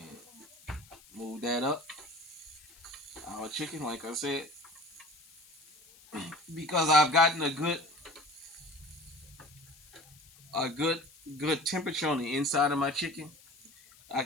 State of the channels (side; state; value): left; noise; hiss, 24 dB below the sound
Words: move that up. Our chicken, like I said, because I've gotten a good temperature on the inside of my chicken, I